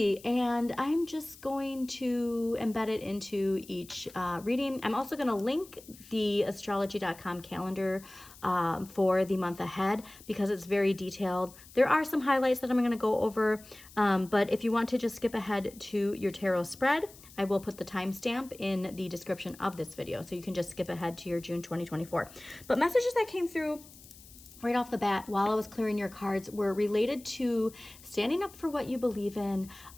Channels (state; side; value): noise; left; hiss, 21 dB below the sound